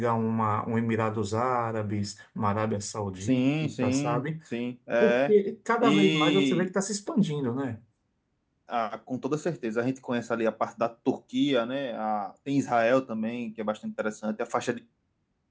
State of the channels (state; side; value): identical; both; correlation 1.00